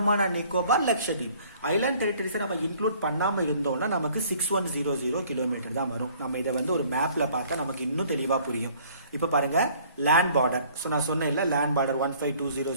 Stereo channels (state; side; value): inverted; both; correlation -0.56